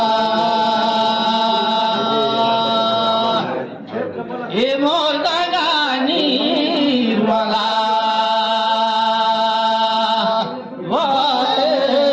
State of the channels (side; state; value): both; identical; correlation 1.00